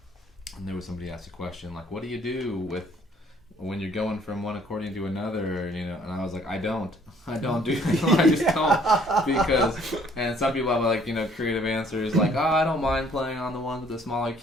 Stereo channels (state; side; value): normal; both; correlation 0.60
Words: and there was somebody asked a question like, what do you do with when you're going from one accordion to another, you know? And I was like, I don't do I just don't, because, and some people have like, you know, creative answers like, oh, I don't mind playing on the ones with the smaller